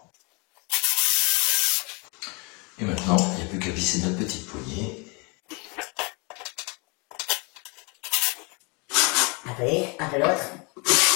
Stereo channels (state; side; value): quieter; right; 30.7 dB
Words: Et maintenant, il n'y a plus qu'à visser notre petite poignée. Un peu une, un peu l'autre.